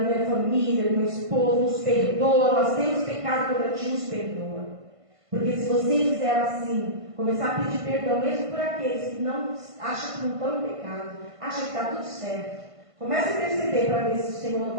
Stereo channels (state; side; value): late; left; 1.5 ms